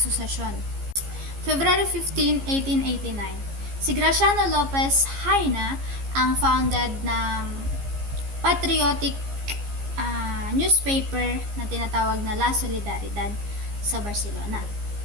February 15, 1889, si Graciano Lopez Haina ang founded ng patriotic newspaper na tinatawag na La Solidaridad sa Barcelona.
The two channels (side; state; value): left; late; 15 ms